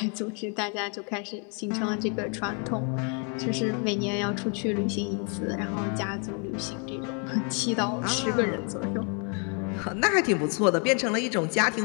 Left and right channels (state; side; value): quieter; right; 38.2 dB